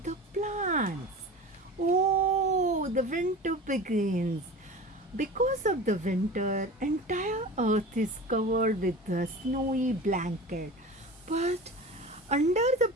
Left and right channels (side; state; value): both; normal; correlation 0.35